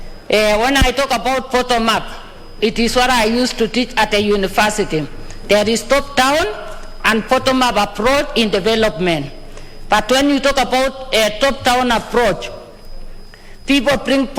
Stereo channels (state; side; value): identical; both; correlation 1.00